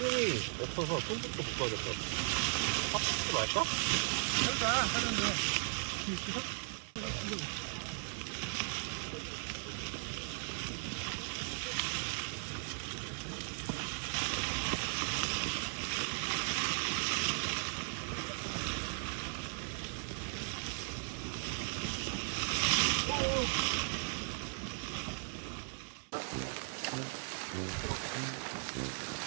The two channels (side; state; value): left; silent; 53 dB below the other